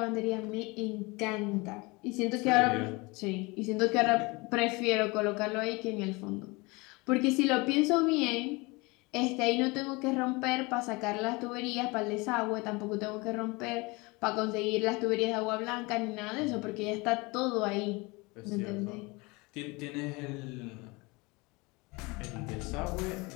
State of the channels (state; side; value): quieter; right; 25.6 dB